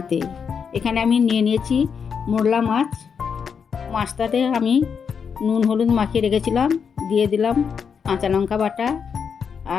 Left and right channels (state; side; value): quieter; right; 6.5 dB